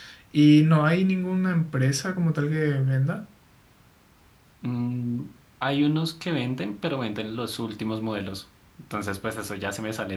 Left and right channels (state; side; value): identical; both; correlation 1.00